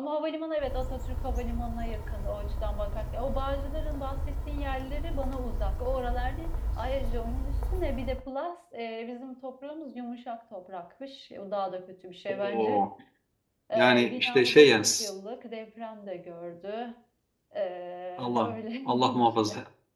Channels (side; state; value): both; identical; correlation 1.00